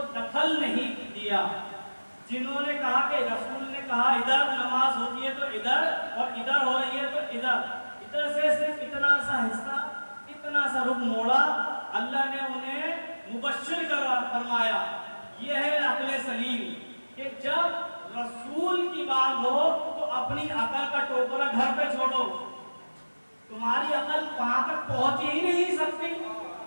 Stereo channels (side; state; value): both; inverted; correlation -1.00